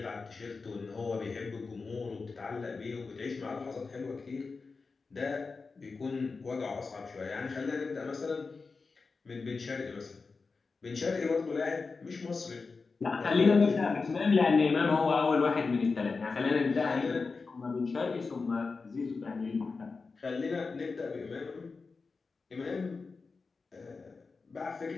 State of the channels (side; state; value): right; quieter; 4.4 dB